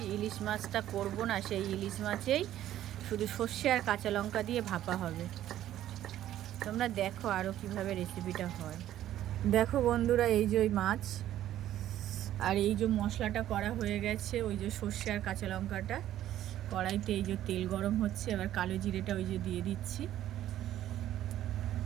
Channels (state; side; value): quieter; left; 12.5 dB